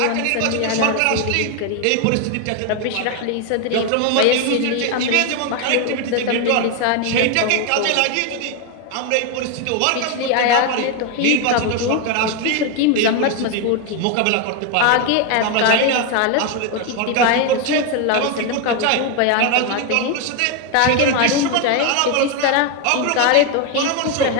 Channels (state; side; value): different; both; correlation 0.01